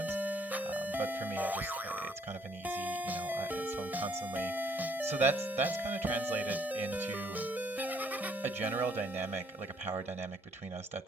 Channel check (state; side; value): normal; both; correlation 0.66